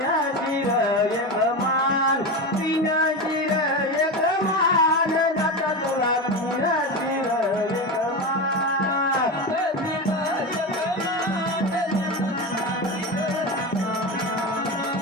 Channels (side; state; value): both; normal; correlation 0.20